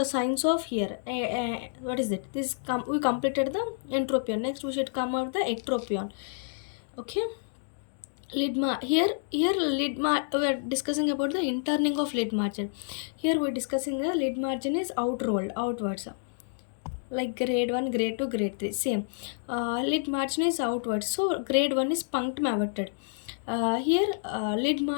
signs of here. What is it? We completed the entropion. Next, we should come out the ectropion. Okay. Here we are discussing about the interning of lid margin. Here we are discussing the lid margin is outrolled outwards, like grade 1, grade 2, grade 3 same. Lid margin is outwards, so grade 1 is punctum averted. Here lid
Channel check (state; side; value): silent; right; digital silence